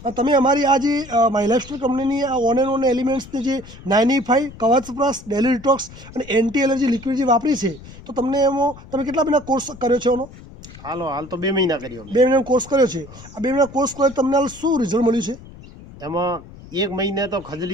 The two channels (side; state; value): left; noise; rumble, 18 dB below the sound